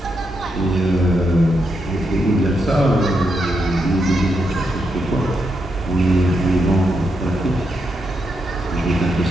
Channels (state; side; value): normal; both; correlation 0.82